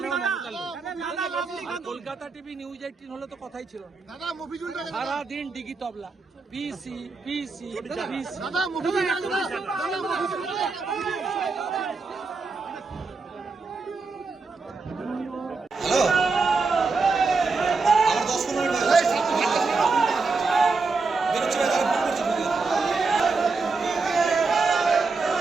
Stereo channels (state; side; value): quieter; left; 4.2 dB